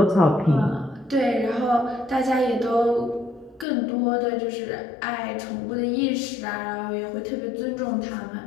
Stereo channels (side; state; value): right; drops out; at 3.7 s